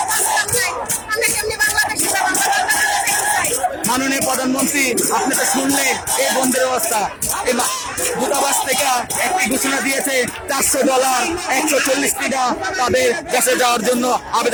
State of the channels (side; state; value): both; identical; correlation 1.00